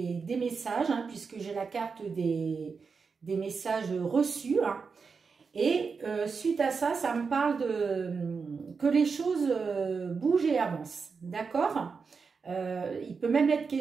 des messages, hein, puisque j'ai la carte des messages reçus. Hein, et suite à ça, ça me parle que les choses bougent et avancent. D'accord. Il peut même être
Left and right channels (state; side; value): quieter; left; 5.2 dB